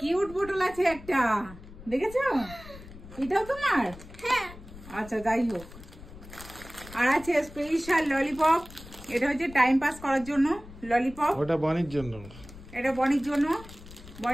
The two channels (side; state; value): left; noise; rumble, 17 dB below the sound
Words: বোতল আছে একটা, দেখেছো? এটাও তোমার? হ্যাঁ। আচ্ছা যাই হোক। আর আছে স্পেশাল ললিপপ, এটা হচ্ছে টাইম পাস করার জন্য ললিপপ। ওটা বনির জন্য। এটা বনির জন্য।